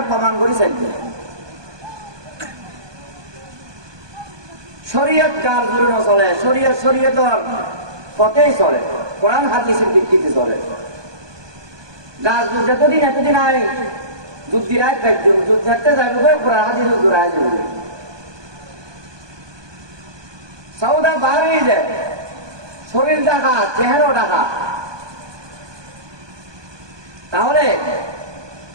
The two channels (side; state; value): left; late; 1.2 ms